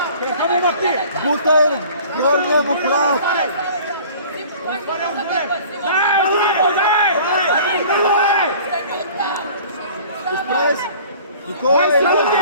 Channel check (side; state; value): both; inverted; correlation -0.47